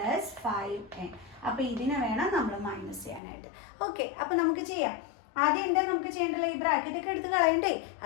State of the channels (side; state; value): right; drops out; at 3.2 s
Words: 5n. അപ്പോൾ ഇതിനെ വേണം നമ്മൾ മൈനസ് ചെയ്യാനായിട്ട്. ഓക്കെ, അപ്പോൾ നമുക്ക് ചെയ്യാം. ആദ്യം എന്താ നമുക്ക് ചെയ്യേണ്ടത്? ഈ ബ്രാക്കറ്റ് ഒക്കെ എടുത്ത് കളയണ്ടേ?